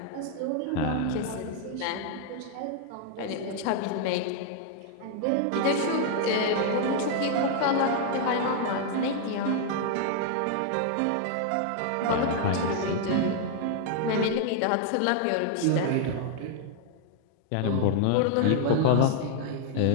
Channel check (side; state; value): both; different; correlation 0.00